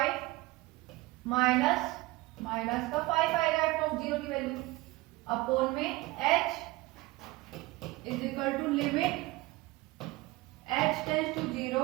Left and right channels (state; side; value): quieter; left; 20.4 dB